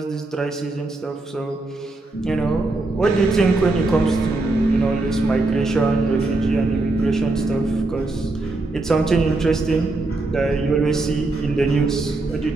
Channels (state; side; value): quieter; left; 3.1 dB